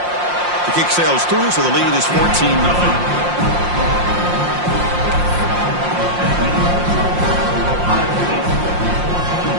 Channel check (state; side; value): late; left; 5.7 ms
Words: The kick sails through, so the lead is 14-0.